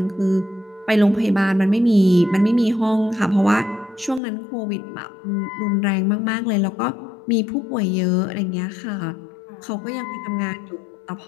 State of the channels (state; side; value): drops out; right; at 4.2 s